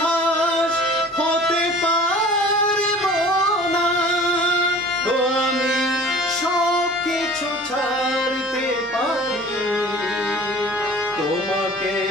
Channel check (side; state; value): both; normal; correlation 0.45